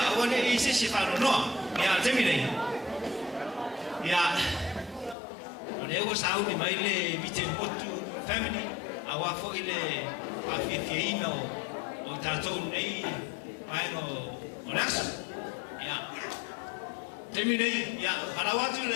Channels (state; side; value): drops out; right; at 5.2 s